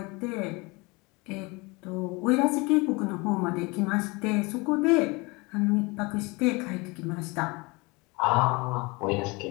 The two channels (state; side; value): quieter; right; 26.2 dB